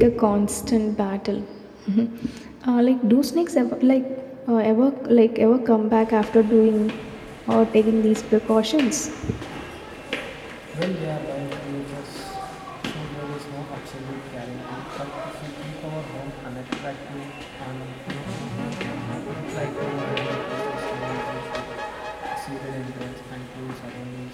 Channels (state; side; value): identical; both; correlation 1.00